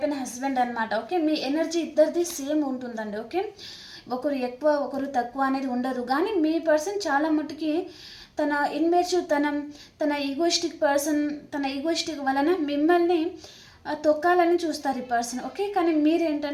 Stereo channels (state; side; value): identical; both; correlation 1.00